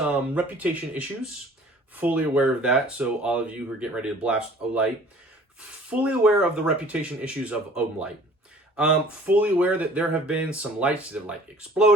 reputation issues. Fully aware of that. So all of you who are getting ready to blast Olight, fully aware of the reputation issues of Olight. Fully aware that there have been some lights that have like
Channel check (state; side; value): normal; both; correlation 0.51